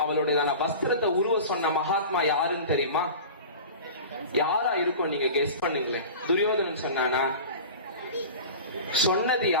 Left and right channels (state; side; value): inverted; both; correlation -0.34